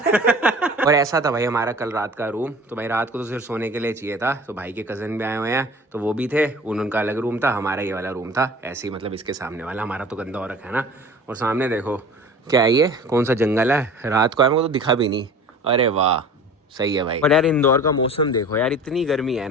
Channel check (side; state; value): both; normal; correlation 0.42